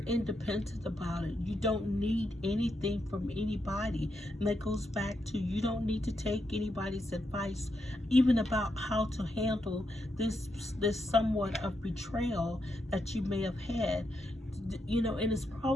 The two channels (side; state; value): both; normal; correlation 0.82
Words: about it. You don't need anything from anybody. And that goes back to, you don't need to take anybody's advice, even about how to handle this somewhat of betrayal that you may have had. You know, and it's